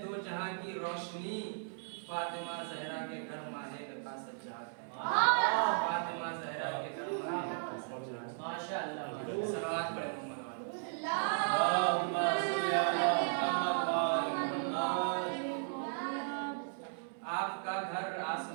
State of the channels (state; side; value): silent; left; digital silence